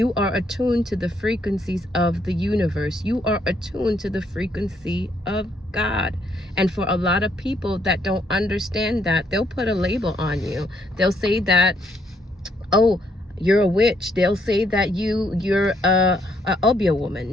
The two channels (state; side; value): normal; both; correlation 0.71